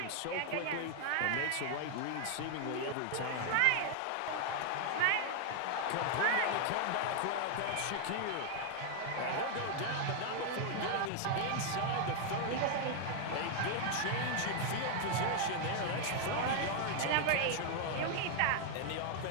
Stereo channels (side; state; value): both; different; correlation 0.00